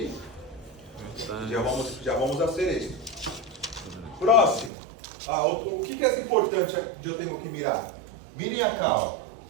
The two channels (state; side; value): drops out; left; at 4.7 s